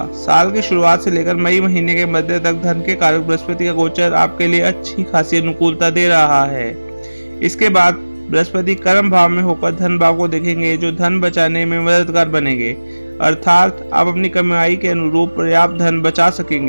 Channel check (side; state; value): both; inverted; correlation -1.00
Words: साल की शुरुआत से लेकर मई महीने के मध्य तक धन के कारक बृहस्पति का गोचर आपके लिए अच्छी खासी अनुकूलता दे रहा है। इसके बाद बृहस्पति कर्म भाव में होकर धन भाव को देखेंगे, जो धन बचाने में मददगार बनेंगे। अर्थात आप अपनी कमाई के अनुरूप पर्याप्त धन बचा